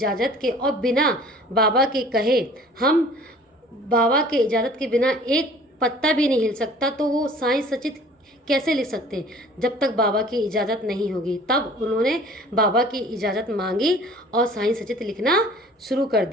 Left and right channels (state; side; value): normal; both; correlation 0.49